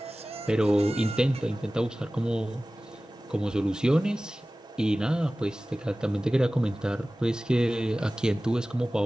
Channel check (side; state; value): both; normal; correlation 0.97